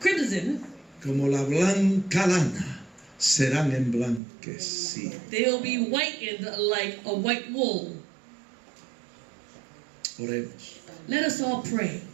crimson, como la blanca lana, serán emblanquecidos. they'll be whitened like a white wool. Oremos. Let us all pray.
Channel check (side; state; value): left; drops out; at 4.2 s